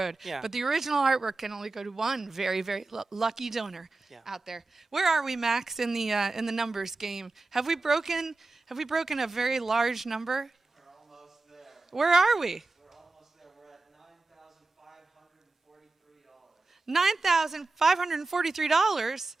Yeah. But the original artwork can only go to one very, very lucky donor out there. Where are we, Max, in the numbers game? Have we broken a very large number? Where are we? We're almost there. We're at $9,543.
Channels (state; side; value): quieter; left; 3.4 dB